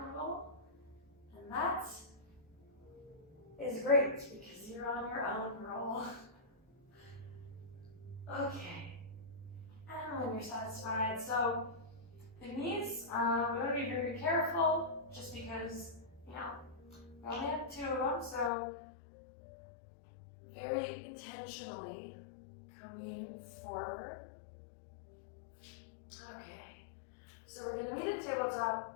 roll. And that is great because you're on your own roll. Okay. And when you're satisfied, so the knees, we want to be very careful just because, we only have two of them, so very intentionally coming forward. Okay, so we're going to meet at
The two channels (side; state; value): right; drops out; at 18.5 s